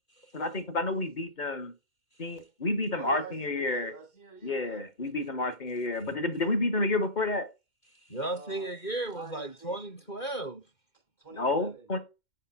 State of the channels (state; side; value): late; right; 2.1 ms